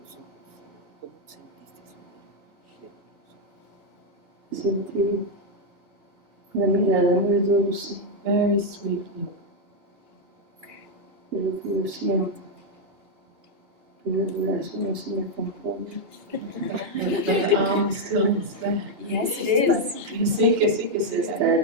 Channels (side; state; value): left; late; 2.9 ms